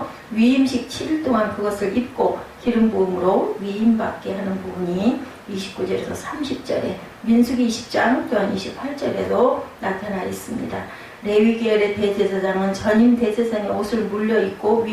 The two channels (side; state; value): both; identical; correlation 1.00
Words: 위임식 7일 동안 그것을 입고 기름 부음으로 위임받게 하는 부분이 29절에서 30절에 민수기 20장 또한 28절에도 나타나 있습니다. 레위 계열의 대제사장은 전임 대제사장의 옷을 물려 입고